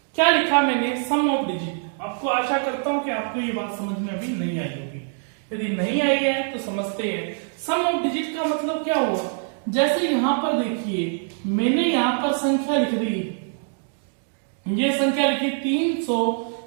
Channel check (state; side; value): silent; left; 63 dB below the other